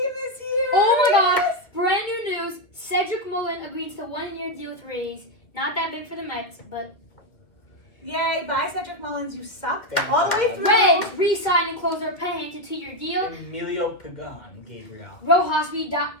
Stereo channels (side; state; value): right; late; 2.1 ms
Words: is here. Oh my God! Brand new news. Cedric Mullen agrees to 1 year deal with Rays. Not that big for the Mets, but Yay, bye Cedric Mullins, you sucked Thank all the way God. through. Reds re-signed and closed their paying to 2 year deal. Emilio Pagan, Gabriel. Rojas